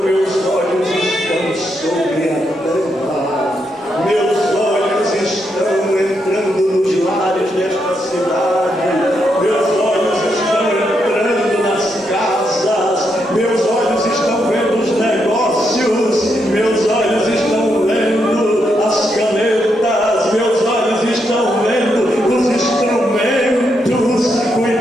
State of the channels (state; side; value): normal; both; correlation 0.80